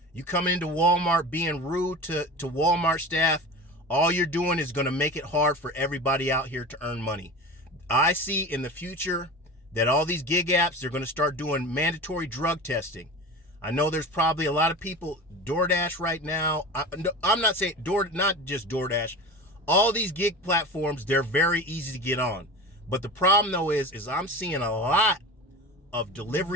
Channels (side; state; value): both; normal; correlation 0.32